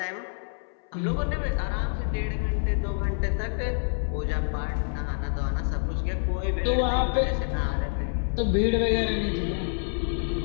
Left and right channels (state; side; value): silent; right; 60 dB below the other